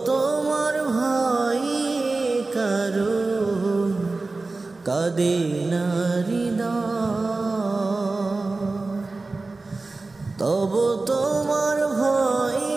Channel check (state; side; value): quieter; left; 3.5 dB